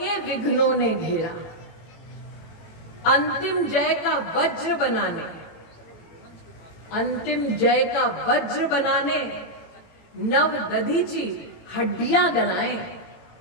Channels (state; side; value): late; right; 18 ms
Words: विघ्नों ने घेरा। अंतिम जय का वज्र बनाने, अंतिम जय का वज्र बनाने, नव दधीची हड्डियां गलाएं,